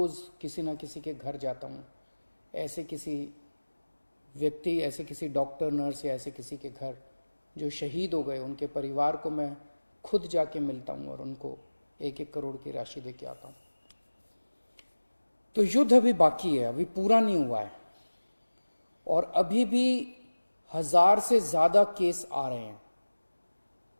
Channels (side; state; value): both; inverted; correlation -1.00